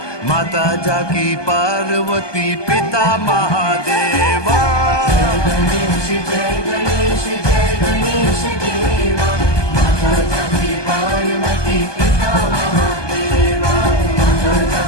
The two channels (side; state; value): right; late; 1.2 ms